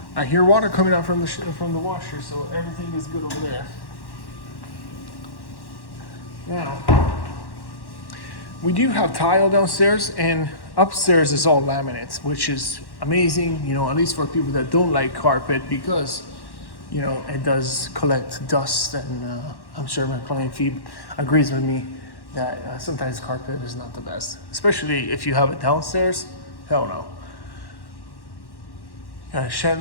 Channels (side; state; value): right; late; 1.1 ms